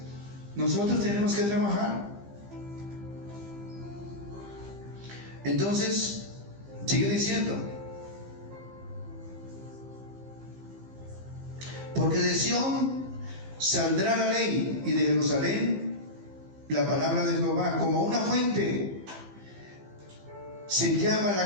nosotros tenemos que trabajar. Entonces, sigue diciendo, porque de Sión saldrá la ley, y de Jerusalén la palabra de Jehová, como una fuente. se llama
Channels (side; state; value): left; late; 15 ms